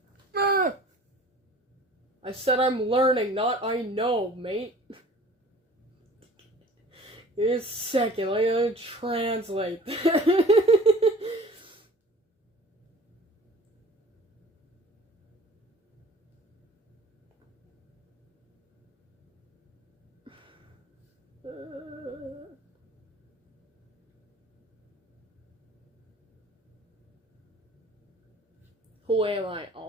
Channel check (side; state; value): both; normal; correlation 0.46